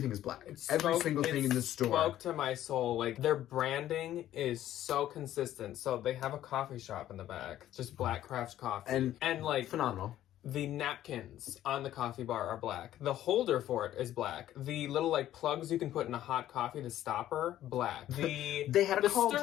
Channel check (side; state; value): right; quieter; 12.7 dB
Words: is black. Every single thing in the store. It spoke to my soul. Like, their branding is so consistent. So they have a coffee shop in the back. Just Black Craft Coffee. And like... Phenomenal. The napkins on the coffee bar are black. The holder for it is black. The little like plugs you can put in a hot coffee, the stopper, black. They had a cauldron.